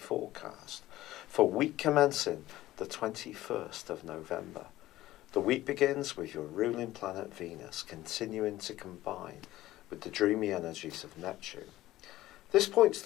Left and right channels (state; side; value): quieter; right; 15.8 dB